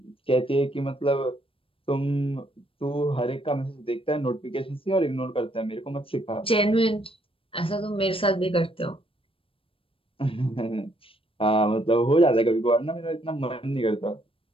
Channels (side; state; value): right; late; 0.26 ms